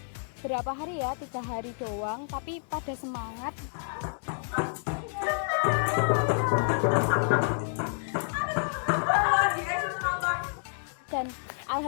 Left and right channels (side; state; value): right; silent; digital silence